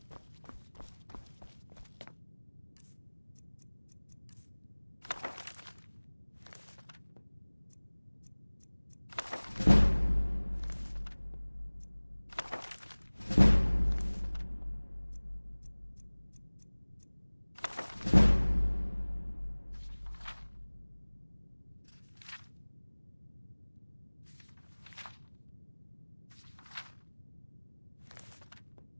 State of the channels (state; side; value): inverted; both; correlation -1.00